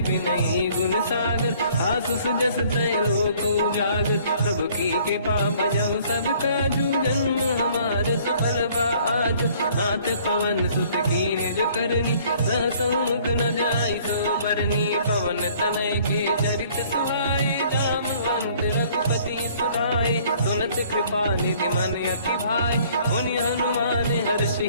विनयी गुण सागर, आसु सुजस त्रैलोक उजागर। प्रभु की कृपा भजऊ सब काजू, जन्म हमार सफल बा आजू। नाथ पवन सुत की निज करनी, सहसो मुख न जाई सुबरनी पवन तनय के चरित सुहाए जामवंत रघुपति सुनाए सुनत कृपा निधि मन अति भाई मुनि हनुमान हर्षि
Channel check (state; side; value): inverted; both; correlation -0.57